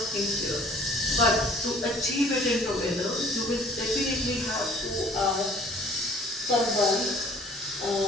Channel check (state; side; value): normal; both; correlation 0.54